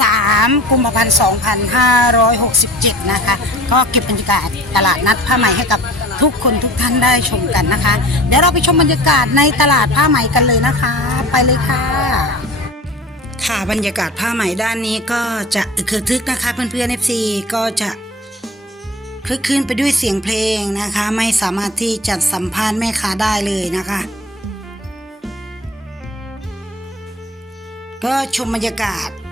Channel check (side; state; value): both; normal; correlation 0.40